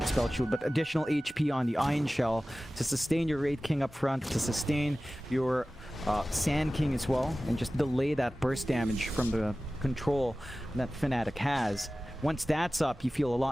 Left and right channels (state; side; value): normal; both; correlation 0.97